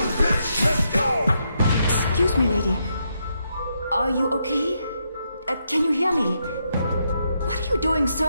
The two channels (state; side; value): inverted; both; correlation -0.80